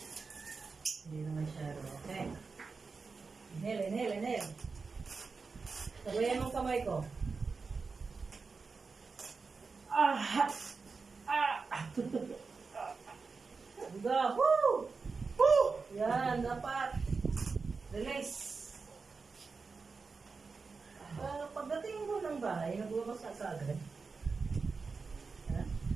masyado. Okay. Inhale. Sabayan mong kamay ko. Diba? Woo! Woo! Yan, dapat. Release. Pagdating mo ng bahay, nagbabasa ka agad. Ha?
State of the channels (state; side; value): quieter; left; 4.6 dB